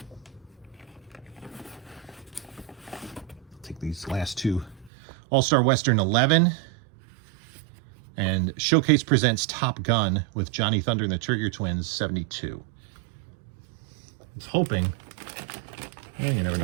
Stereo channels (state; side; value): drops out; left; at 4.9 s